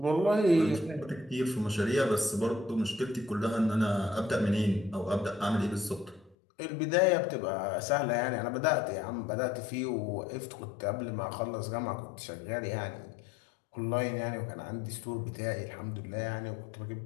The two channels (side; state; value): right; drops out; at 6.4 s